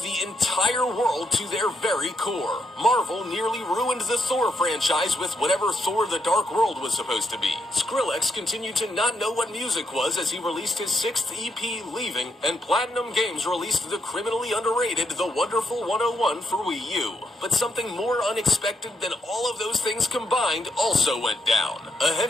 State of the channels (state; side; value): normal; both; correlation 0.77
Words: entire world to their very core. Marvel nearly ruined the Thor franchise with whatever Thor the Dark World was supposed to be. Skrillex continued to not know what music was as he released his 6th EP, Leaving, and Platinum Games released the criminally underrated The Wonderful 101 for Wii U. But something more unexpected than all of those things combined also went down. A